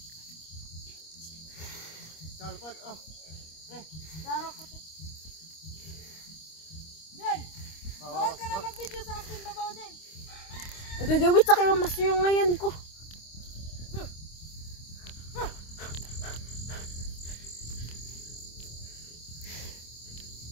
Dalpot, oh. Daro ko, te. Diyan. Doon ka na mag-video sa akin, babaw din. Nagagawit sa kayo mas yung ngayon ko.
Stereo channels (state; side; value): late; right; 25 ms